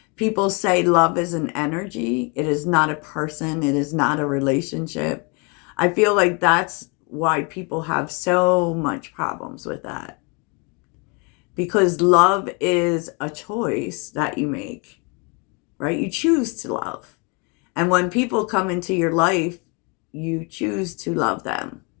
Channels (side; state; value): right; quieter; 32.3 dB